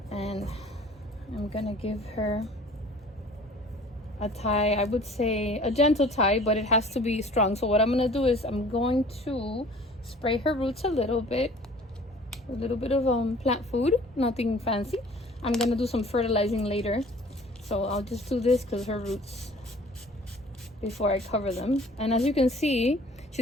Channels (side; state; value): both; normal; correlation 0.50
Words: And I'm gonna give her a tie, I would say a gentle tie, but it has to be strong. So what I'm gonna do is I'm going to spray her roots a little bit of plant food, nothing fancy. I'm gonna do some fertilizing later. So I'll just do this because her roots, before I cover them. And as you can see,